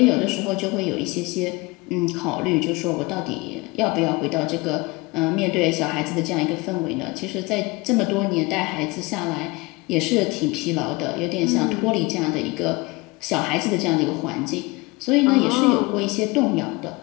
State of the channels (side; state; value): right; quieter; 24.2 dB